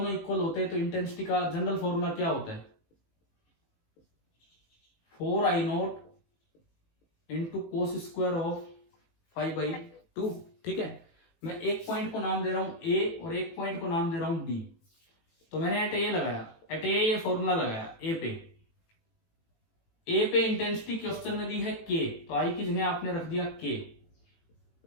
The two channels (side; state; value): right; late; 18 ms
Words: इक्वल होते हैं तो इंटेंसिटी का जनरल फॉर्मूला क्या होता है, 4I0 into cos square of 5/2। ठीक है, मैं एक पॉइंट को नाम दे रहा हूं ए और एक पॉइंट को नाम दे रहा हूं बी। तो मैंने एट ए लगाया, एट ए ये फॉर्मूला लगाया ए पे इंटेंसिटी क्वेश्चन में दी है के, तो आई की जगह आपने रख दिया के